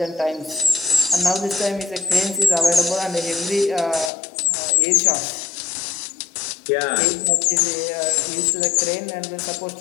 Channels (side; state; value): right; drops out; at 4.1 s